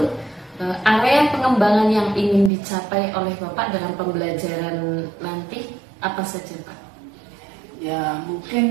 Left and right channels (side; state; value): left; drops out; at 2.5 s